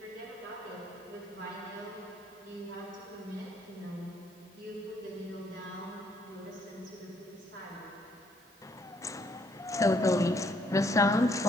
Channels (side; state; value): both; normal; correlation 0.68